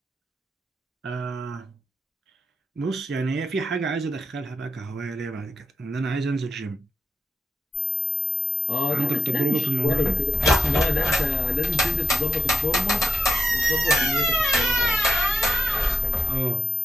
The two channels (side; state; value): both; normal; correlation 0.69